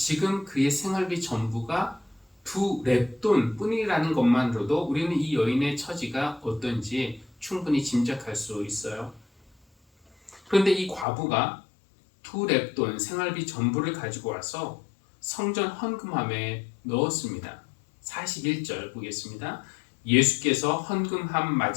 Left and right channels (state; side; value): drops out; right; at 11.1 s